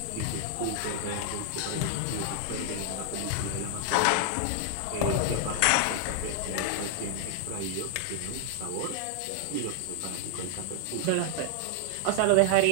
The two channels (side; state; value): both; different; correlation 0.00